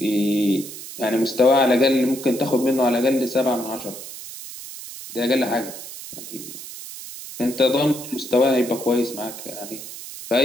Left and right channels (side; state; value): right; noise; hiss, 12 dB below the sound